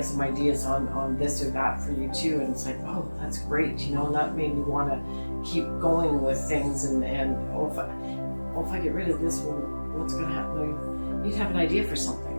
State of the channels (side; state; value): both; inverted; correlation -1.00